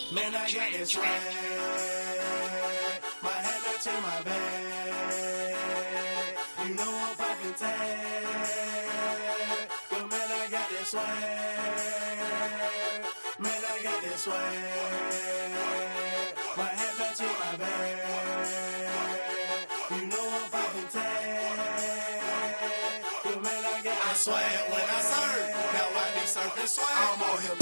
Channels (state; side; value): inverted; both; correlation -1.00